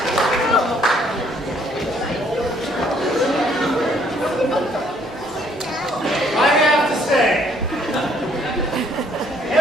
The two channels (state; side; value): normal; both; correlation 0.65